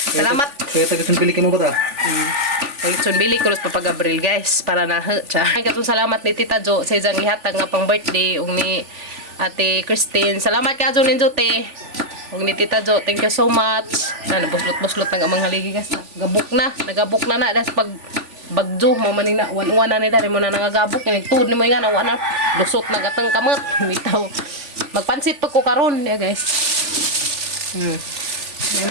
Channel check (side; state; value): left; late; 3.4 ms